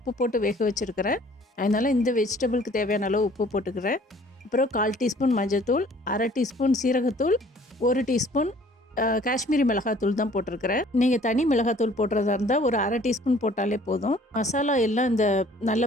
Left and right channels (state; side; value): normal; both; correlation 0.54